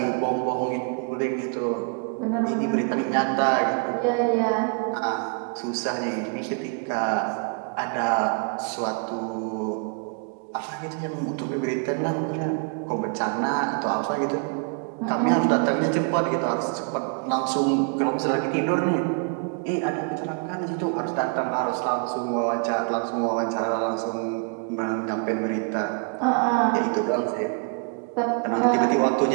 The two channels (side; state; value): left; quieter; 37.5 dB